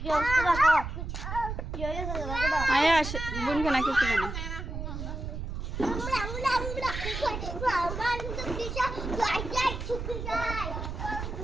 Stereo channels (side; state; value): right; noise; rumble, 6 dB below the sound